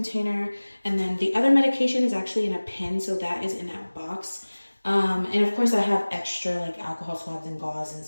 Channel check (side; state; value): both; inverted; correlation -1.00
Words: and then the other medication is actually in a pen, so that is in that box. And of course I have extra alcohol swabs and gauze and